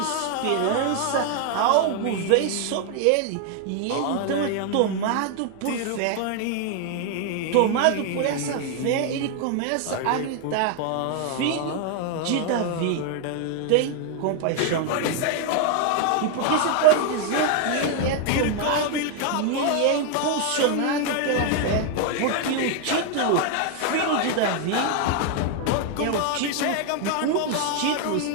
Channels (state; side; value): different; both; correlation 0.00